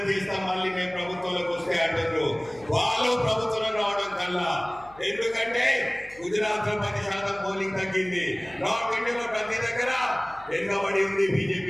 చేస్తాం, మళ్ళీ మేము ప్రభుత్వంలోకి వస్తే అంటారు. వాళ్ళు ప్రభుత్వం రావడం కల్లా ఎందుకంటే గుజరాత్ లో 10% పోలింగ్ తగ్గింది. నార్త్ ఇండియాలో ప్రతి దగ్గర వెనుకబడి ఉంది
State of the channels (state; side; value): noise; left; hum, 23 dB below the sound